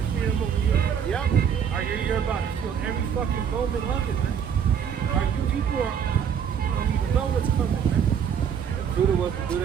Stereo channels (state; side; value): quieter; left; 7.7 dB